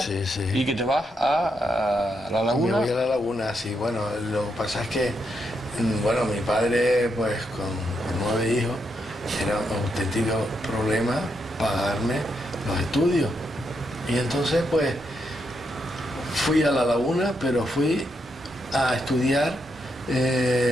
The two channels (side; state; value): both; normal; correlation 0.80